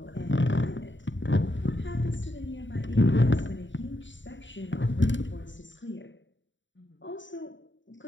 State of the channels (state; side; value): late; right; 0.54 ms